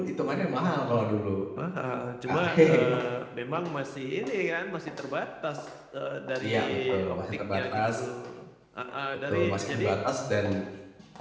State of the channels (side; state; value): both; identical; correlation 1.00